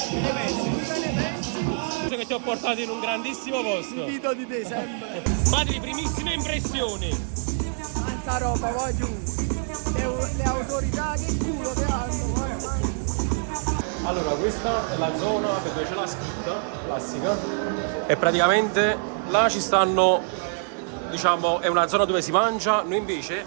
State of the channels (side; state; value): left; silent; 61 dB below the other